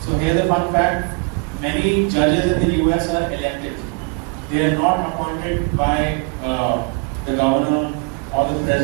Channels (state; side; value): quieter; left; 32.0 dB